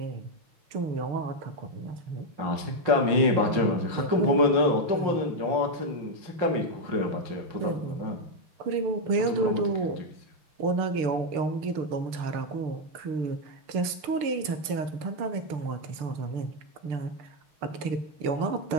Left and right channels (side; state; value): left; late; 6.7 ms